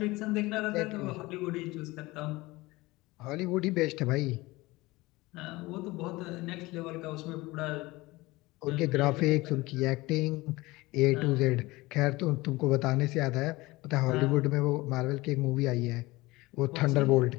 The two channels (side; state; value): right; quieter; 21.0 dB